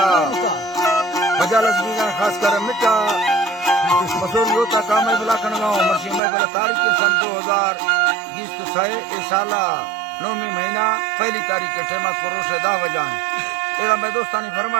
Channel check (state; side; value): drops out; left; at 6.2 s